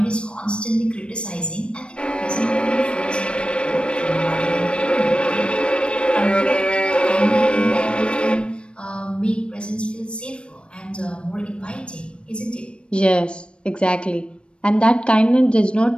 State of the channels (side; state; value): right; late; 0.057 ms